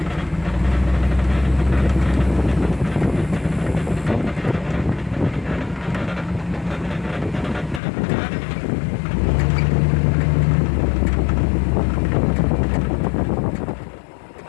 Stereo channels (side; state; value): right; drops out; at 7.8 s